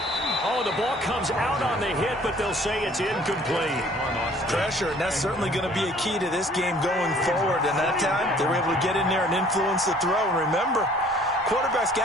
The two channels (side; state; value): both; normal; correlation 0.55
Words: Oh, the ball comes out on the hit, but they'll say it's incomplete. Pressure, and that's certainly going to be a key to this game going forward. And that time, they were able to get in there and influence the throw. And remember, quarterbacks